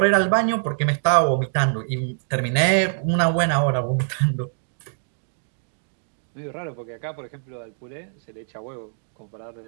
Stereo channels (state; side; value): silent; left; digital silence